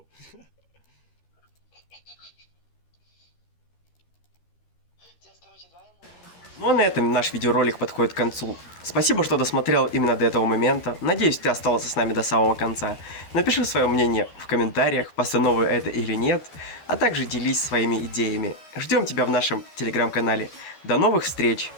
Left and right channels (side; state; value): right; late; 13 ms